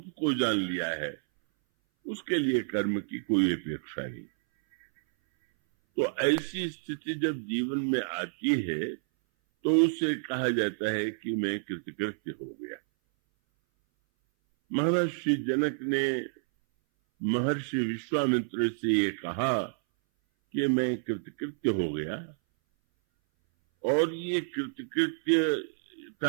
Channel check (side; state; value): left; silent; 58 dB below the other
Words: को जान लिया है, उसके लिए कर्म की कोई अपेक्षा नहीं। तो ऐसी स्थिति जब जीवन में आती है तो उसे कहा जाता है कि मैं कृतकृत्य हो गया। महर्षि जनक ने महर्षि विश्वामित्र से ये कहा कि मैं कृतकृत्य हो गया, और ये